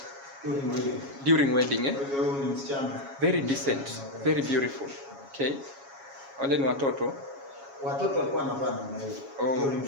during wedding. Very decent, very beautiful. Okay. Wale ni watoto. Watoto walikuwa wanavaa namna hiyo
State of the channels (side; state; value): left; late; 7.3 ms